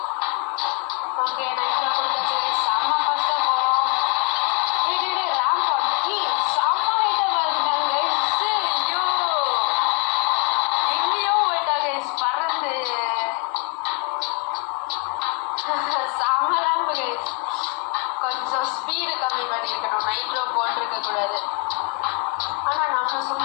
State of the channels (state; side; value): quieter; right; 35.5 dB